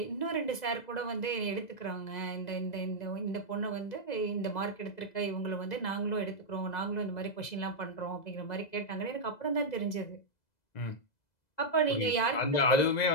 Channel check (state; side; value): late; right; 2.0 ms